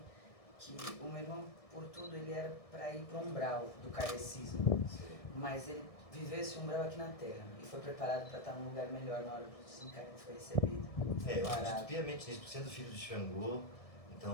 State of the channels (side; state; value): right; late; 1.6 ms